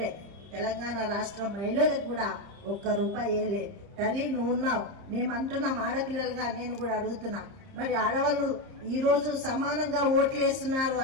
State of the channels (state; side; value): late; left; 30 ms